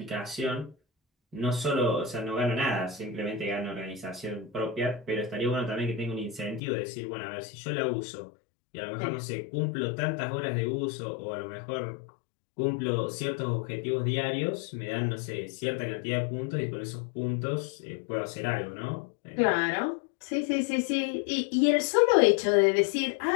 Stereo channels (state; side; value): drops out; right; at 6.6 s